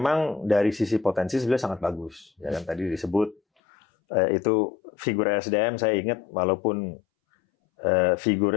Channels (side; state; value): right; drops out; at 3.4 s